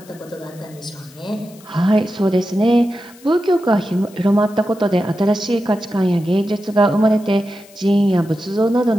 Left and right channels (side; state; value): left; noise; hiss, 24 dB below the sound